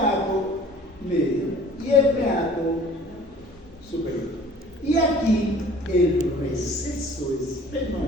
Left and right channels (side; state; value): both; normal; correlation 0.49